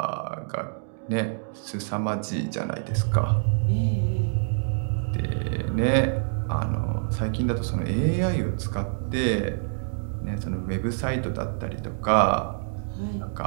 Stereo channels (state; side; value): silent; left; digital silence